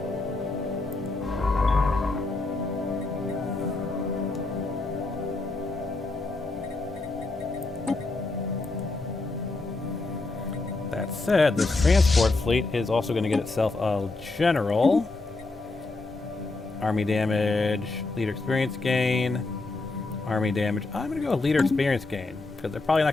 That said, this transport fleet is also going to get itself a general. Army damage, leader experience gain, army damage. I'm going to go with leader experience gain, because they're probably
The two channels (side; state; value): right; quieter; 3.3 dB